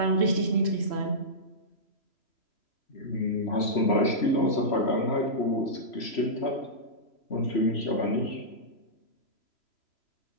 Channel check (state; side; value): late; right; 3.0 ms